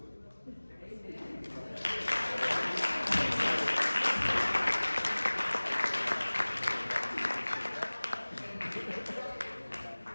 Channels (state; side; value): inverted; both; correlation -1.00